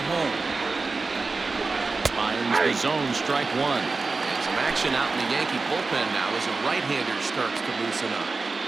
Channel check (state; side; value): quieter; left; 3.9 dB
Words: Finds the zone, strike 1. And some action out in the Yankee bullpen now as a right-hander starts to loosen up.